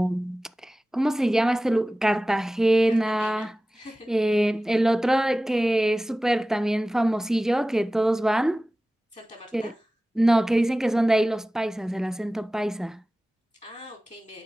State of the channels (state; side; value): normal; both; correlation 0.97